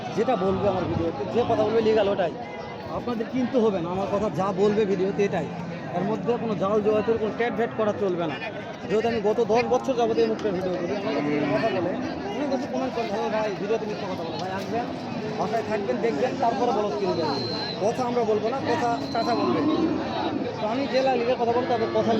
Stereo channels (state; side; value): identical; both; correlation 1.00